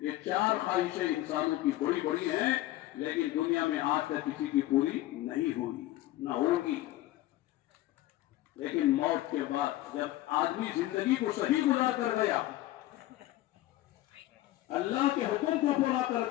4 خواہشیں انسانوں کی بڑی بڑی ہیں لیکن دنیا میں آج تک کسی کی پوری نہیں ہوئی, نہ ہوگی. لیکن موت کے بعد جب آدمی زندگی کو صحیح گزار کر گیا, اللہ کے حکم کو پورا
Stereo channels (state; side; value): quieter; right; 15.7 dB